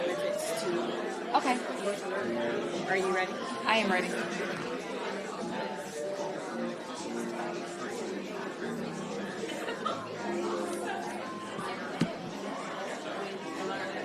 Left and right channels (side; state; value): both; identical; correlation 1.00